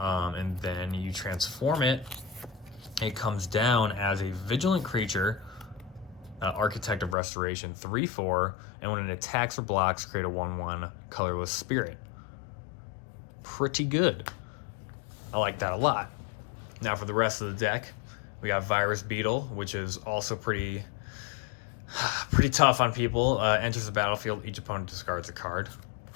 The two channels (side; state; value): right; drops out; at 7.2 s